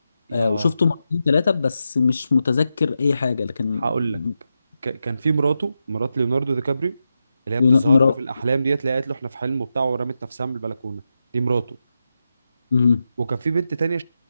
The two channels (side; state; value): both; inverted; correlation -0.88